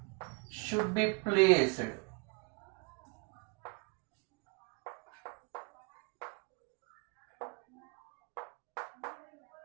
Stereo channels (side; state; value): left; quieter; 31.2 dB